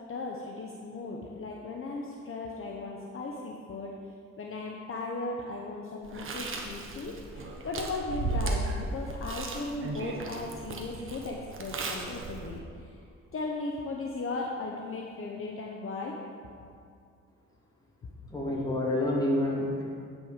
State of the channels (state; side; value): normal; both; correlation 0.34